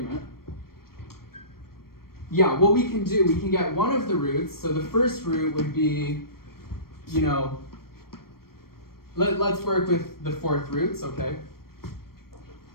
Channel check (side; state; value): right; late; 0.94 ms